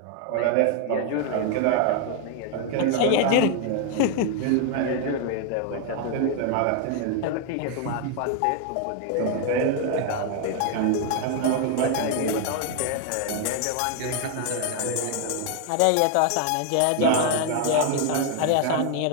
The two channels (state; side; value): different; both; correlation 0.00